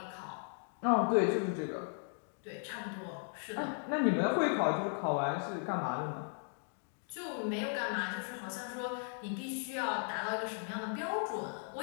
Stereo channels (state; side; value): silent; right; 53 dB below the other